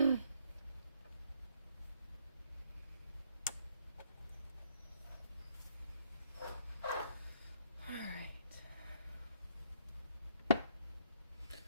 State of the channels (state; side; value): inverted; both; correlation -0.70